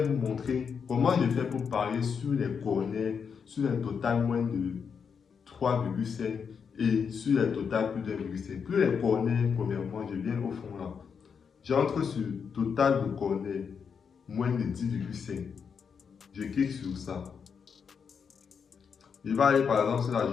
vous montrer comment je fais pour parier sur les corners, sur un total moins de 3,5 et sur les total plus d'1,5. Plus les corners, premièrement, je viens au fond là. J'entre sur total de corners moins de 10,5. Je clique sur ça. Je vais aller par exemple sur la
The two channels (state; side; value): quieter; right; 6.4 dB